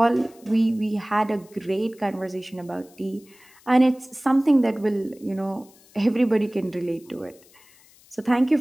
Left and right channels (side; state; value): left; noise; hiss, 27 dB below the sound